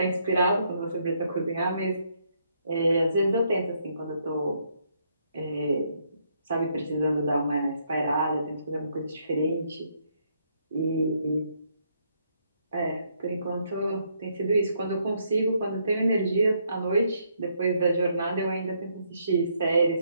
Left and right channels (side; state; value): both; inverted; correlation -0.73